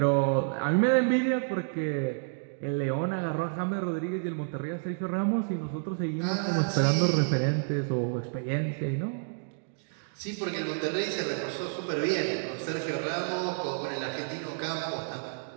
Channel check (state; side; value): silent; left; digital silence